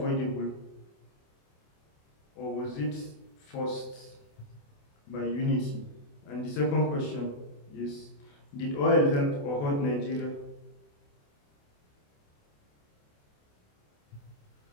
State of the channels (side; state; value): right; late; 28 ms